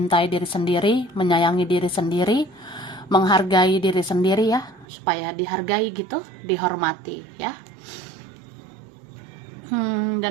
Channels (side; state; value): left; drops out; at 4.9 s